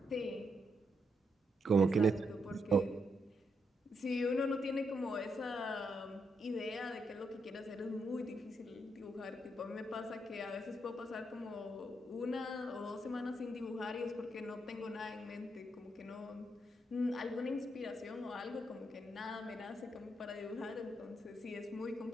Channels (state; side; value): normal; both; correlation 0.79